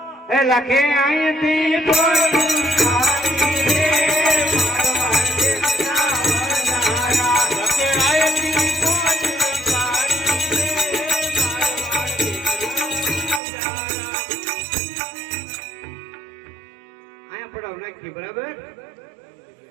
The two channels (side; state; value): left; drops out; at 13.4 s